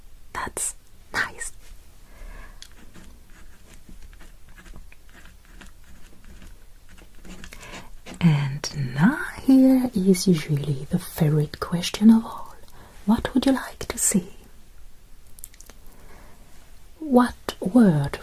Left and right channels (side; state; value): both; identical; correlation 1.00